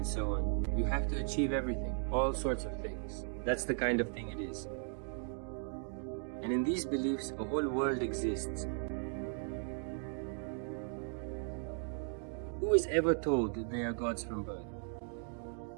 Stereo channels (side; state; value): left; silent; 53 dB below the other